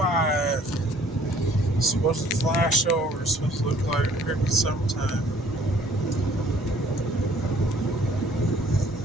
It's supposed to flash over. It's supposed to look like it could be sometime.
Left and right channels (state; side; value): normal; both; correlation 0.57